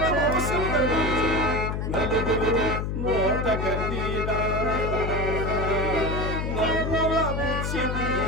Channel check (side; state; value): left; noise; hum, 2 dB below the sound